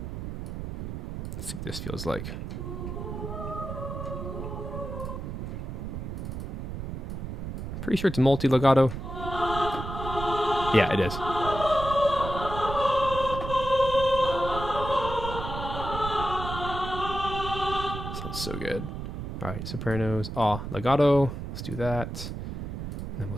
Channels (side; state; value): right; noise; rumble, 6 dB below the sound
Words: see what this feels like. Pretty sure it's multi-legato. Yeah, it is. Sounds so good. All right, sopranos. Ah, legato. Let's do that. And then we'll